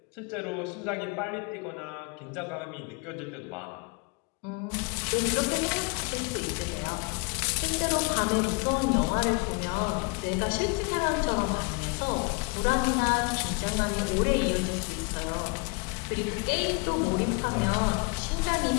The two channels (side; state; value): right; quieter; 31.5 dB